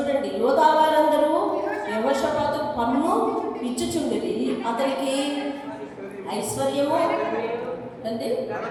యోధా వారందరూ యెహోషాపాతు పన్ను ఇచ్చుచుండిరి. అతనికి ఐశ్వర్యము అంటే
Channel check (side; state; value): both; identical; correlation 1.00